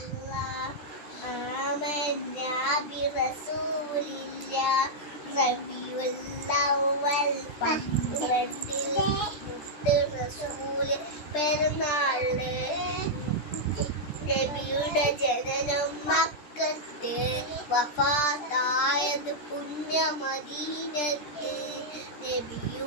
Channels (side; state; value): right; late; 13 ms